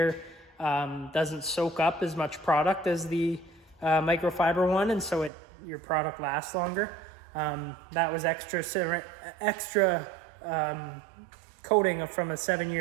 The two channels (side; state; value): left; drops out; at 5.3 s